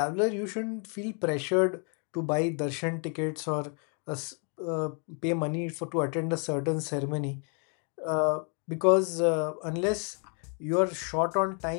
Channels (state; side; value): quieter; right; 39.7 dB